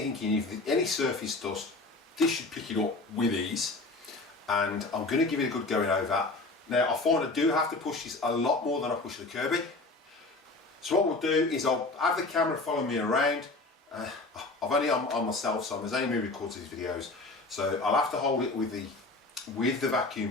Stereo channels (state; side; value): quieter; right; 3.2 dB